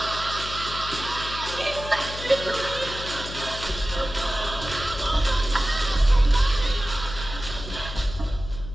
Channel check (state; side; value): noise; left; hum, 10 dB below the sound